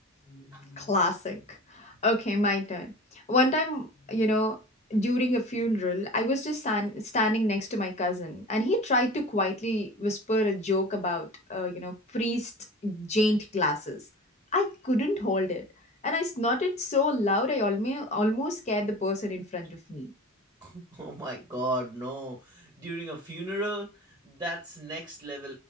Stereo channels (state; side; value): normal; both; correlation 0.37